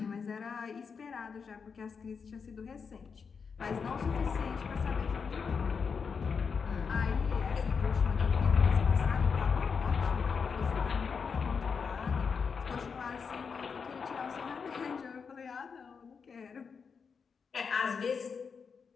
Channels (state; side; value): quieter; right; 5.8 dB